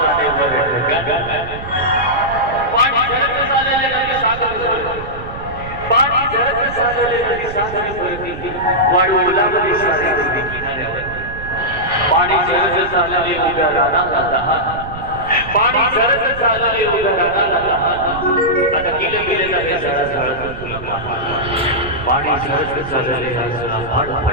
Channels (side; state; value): right; noise; rumble, 12 dB below the sound